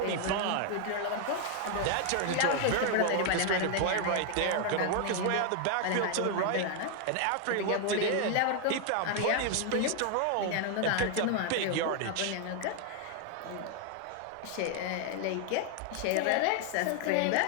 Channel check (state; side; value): different; both; correlation 0.00